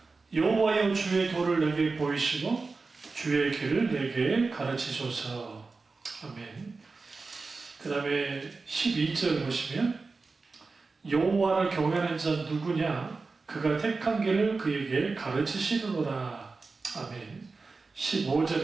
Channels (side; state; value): left; quieter; 4.1 dB